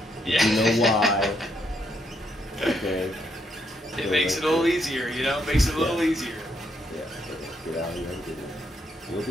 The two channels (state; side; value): normal; both; correlation 0.75